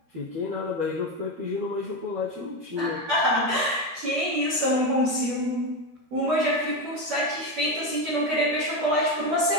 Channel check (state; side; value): late; left; 13 ms